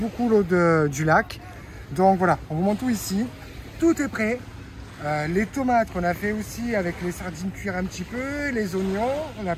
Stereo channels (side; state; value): both; identical; correlation 1.00